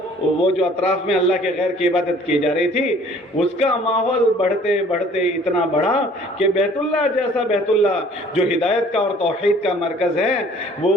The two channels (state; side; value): normal; both; correlation 0.55